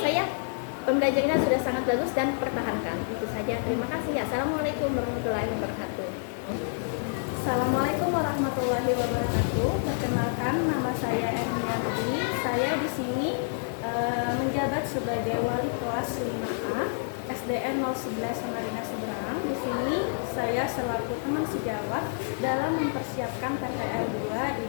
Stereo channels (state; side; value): silent; right; digital silence